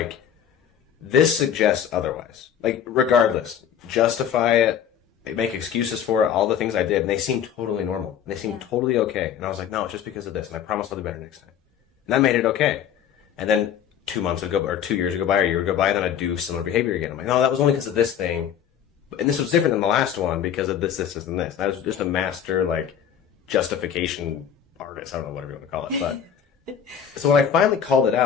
this suggests otherwise. Like, regardless, justify it, make excuses for it, all the things I did, and they seemed totally normal. And they seemed totally okay. And I was like, no, it's just because of this, and I promise I'll do better next time. And that made it okay. And then 2 months would go, or 2 years would go by, or a year would go by, and then I'd do similar behavior again. I'm like, no, that was only because of this thing. And this was different than the last one because of this, and this. And I was just a master, like, justification artist. I don't know, whatever you want to call it. But so when I finally called it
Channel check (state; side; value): quieter; right; 8.9 dB